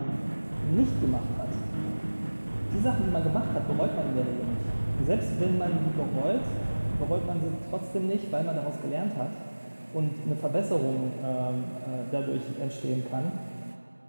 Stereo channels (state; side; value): inverted; both; correlation -1.00